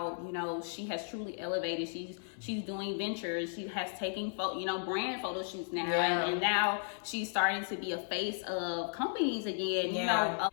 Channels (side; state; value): right; silent; 55 dB below the other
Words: you know, she has truly elevated. She's doing ventures. She has taken brand photo shoots now, and now she's starting to be a face of companies again. You know,